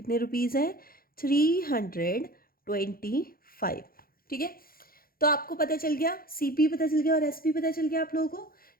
रुपीज़ है, 325। ठीक है, तो आपको पता चल गया, सीपी पता चल गया और एसपी पता चल गया आप लोगों को।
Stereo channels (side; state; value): right; late; 0.43 ms